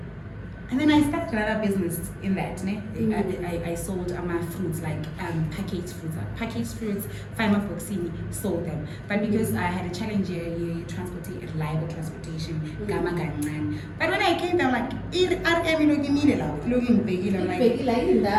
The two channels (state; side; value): identical; both; correlation 1.00